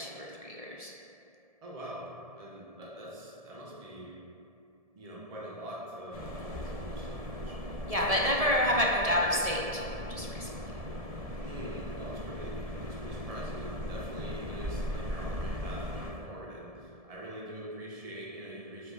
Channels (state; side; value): late; left; 1.7 ms